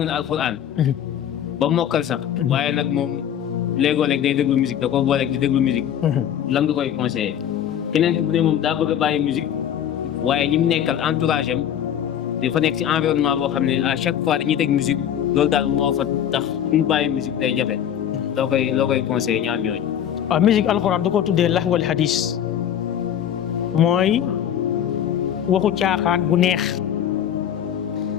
na alxuraan ba mokkal sax waaye nag moom léegoo-léeg day déglu musique da ko booleeg di déglu musique lan nga koy conseillé keneen ki bu ne moom daa bëgg a bàyyi musique waaye ñi mu nekkal entourage am dafa nekk ci environnement boo xam ne à chaque fois dañuy teg musique loolu daal moo fa tax mu bàyyi musique day jafe loo koy conseillé ñaar ñooñu. waaw musique alxuraan da koo tuddee lahwal hadis mooy waxu caaxaan bu neex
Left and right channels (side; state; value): right; quieter; 9.8 dB